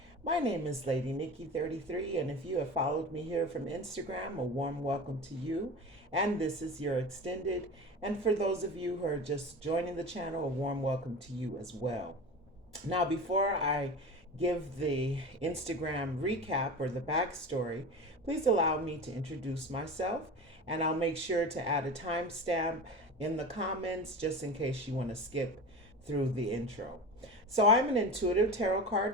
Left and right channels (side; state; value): both; normal; correlation 0.30